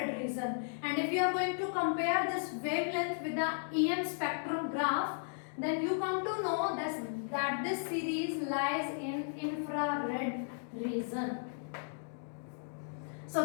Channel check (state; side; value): silent; right; digital silence